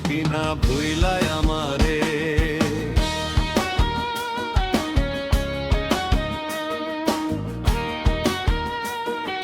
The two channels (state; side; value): identical; both; correlation 1.00